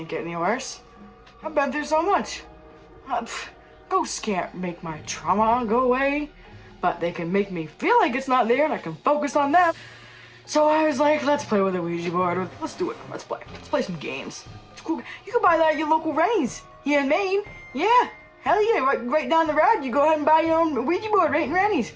get any worse. I've been through so much. Ghosts can't make my trauma go away, but they can make me feel like it's not there and I can focus on that. So I was like, let's play with a Ouija board. Let's do it. Let's play. Let's play some games. It's cool. You can buy that at your local Rennie's here in Maine. Yeah. Hell yeah. Right down the road, you go ahead and buy your own Ouija board right in Rennie's.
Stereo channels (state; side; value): identical; both; correlation 1.00